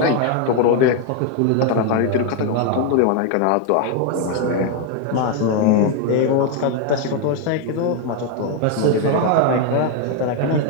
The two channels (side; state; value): both; different; correlation 0.01